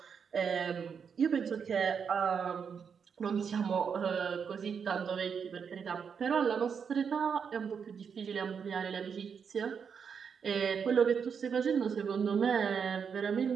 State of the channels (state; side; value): quieter; left; 6.6 dB